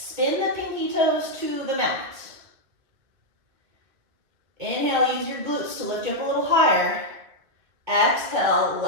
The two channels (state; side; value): late; left; 2.5 ms